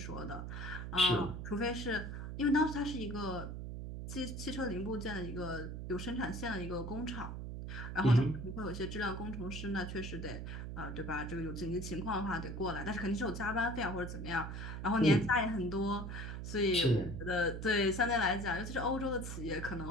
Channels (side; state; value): right; noise; hum, 6 dB below the sound